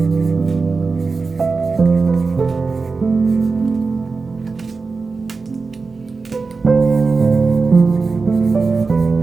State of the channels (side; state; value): left; quieter; 4.3 dB